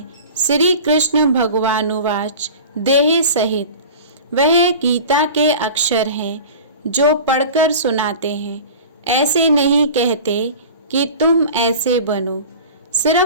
श्री कृष्ण भगवानुवाच देह सहित। वह गीता के अक्षर हैं जो पढ़कर सुनाते हैं। ऐसे नहीं कहते कि तुम ऐसे बनो,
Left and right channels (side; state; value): both; inverted; correlation -0.37